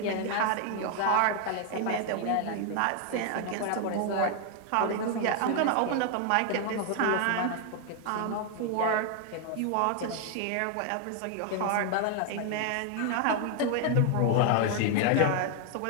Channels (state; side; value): different; both; correlation 0.00